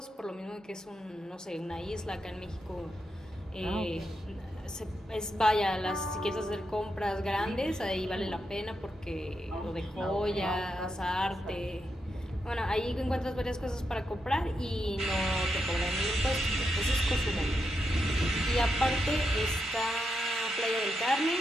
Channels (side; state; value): both; normal; correlation 0.84